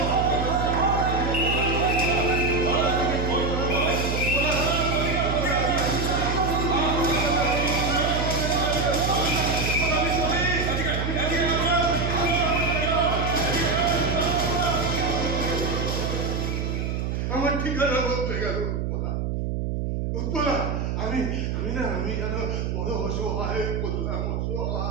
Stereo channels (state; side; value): noise; right; hum, 1 dB below the sound